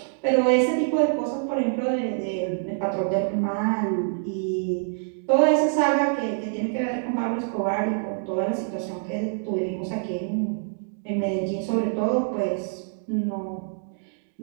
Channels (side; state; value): left; silent; digital silence